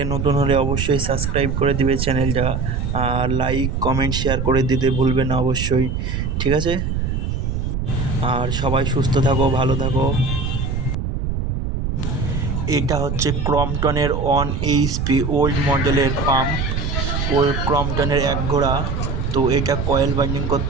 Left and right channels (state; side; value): noise; right; rumble, 1 dB below the sound